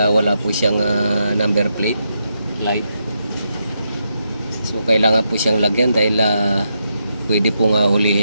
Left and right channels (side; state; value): both; inverted; correlation -0.83